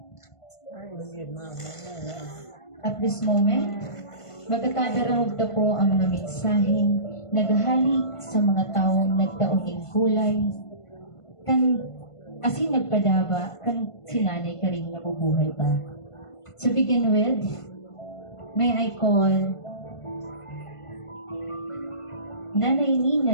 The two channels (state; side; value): late; right; 1.5 ms